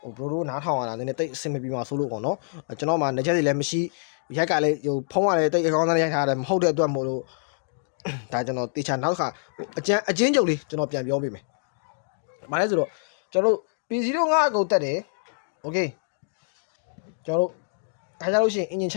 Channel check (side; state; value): right; silent; digital silence